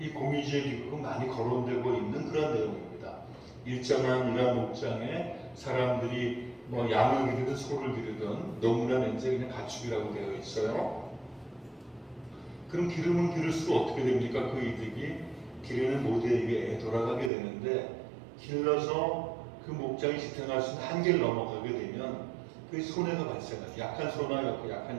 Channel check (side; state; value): left; drops out; at 17.3 s